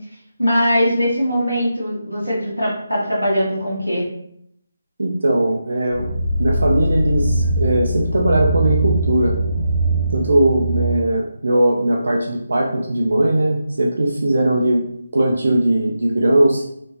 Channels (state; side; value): inverted; both; correlation -0.86